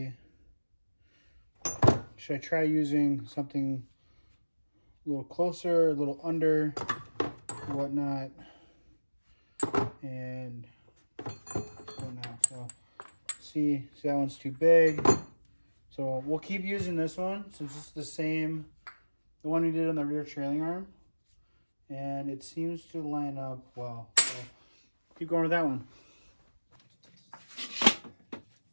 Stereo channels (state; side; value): inverted; both; correlation -1.00